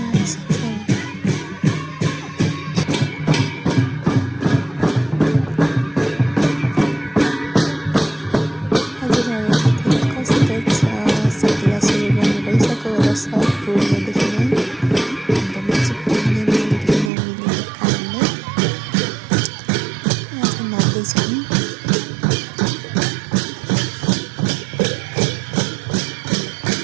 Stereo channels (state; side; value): drops out; left; at 17.1 s